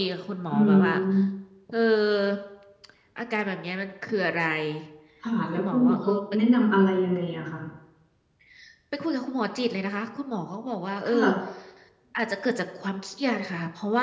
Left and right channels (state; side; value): identical; both; correlation 1.00